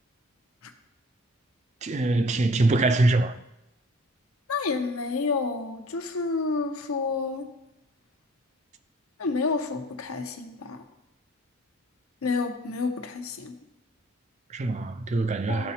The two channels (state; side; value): normal; both; correlation 0.52